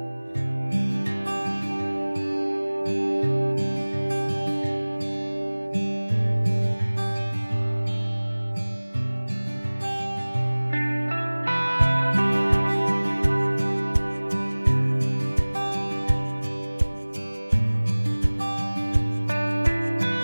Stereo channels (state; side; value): inverted; both; correlation -1.00